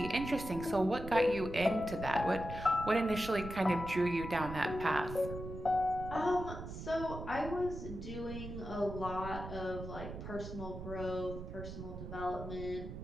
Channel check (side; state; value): right; noise; rumble, 9 dB below the sound